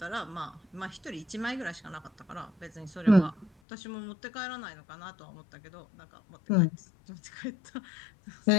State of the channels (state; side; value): drops out; right; at 3.5 s